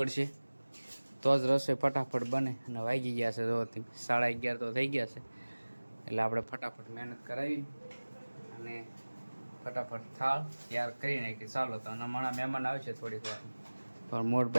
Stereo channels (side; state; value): both; inverted; correlation -1.00